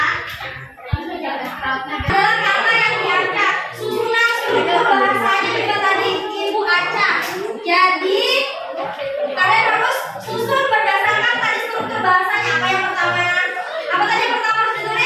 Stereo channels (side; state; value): both; identical; correlation 1.00